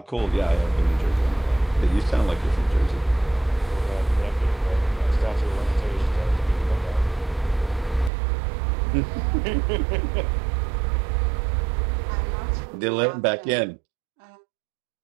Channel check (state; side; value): drops out; left; at 8.1 s